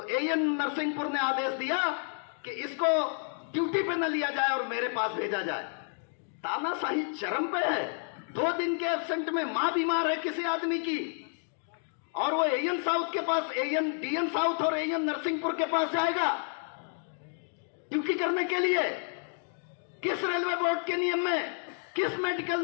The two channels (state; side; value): silent; right; 58 dB below the other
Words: एएन नरसिंहपुर ने आदेश दिया कि इसको ड्यूटी पे न लिया जाए और मेरे पास भेजा जाए। तानाशाही चरम पे है। 2 दिन के एब्सेंट में मां बीमार है किसी आदमी की, और वो एएन साउथ के पास, एएन डीएन साउथ और एएन नरसिंहपुर के पास जाएगा ड्यूटी करने के लिए। किस रेलवे बोर्ड के नियम में, किस मेडिकल